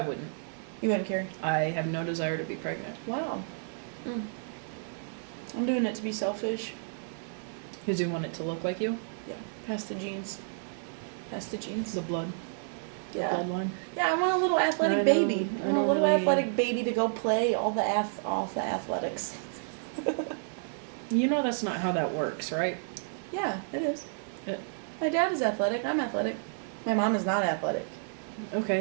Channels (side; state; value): left; silent; 57 dB below the other